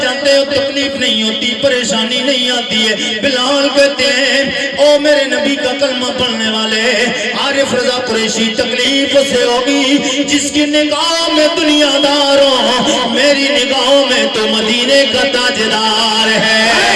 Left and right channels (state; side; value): identical; both; correlation 1.00